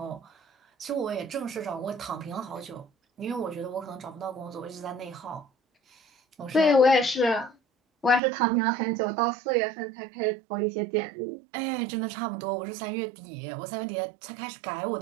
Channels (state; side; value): drops out; left; at 8.2 s